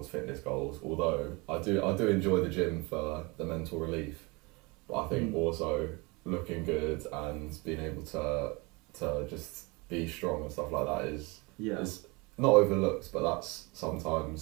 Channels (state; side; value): quieter; left; 26.8 dB